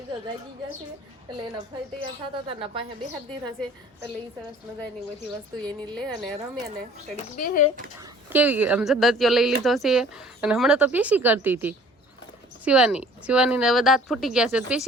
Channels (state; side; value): normal; both; correlation 0.51